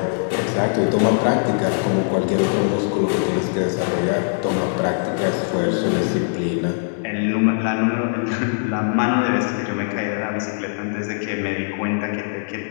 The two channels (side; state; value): right; silent; digital silence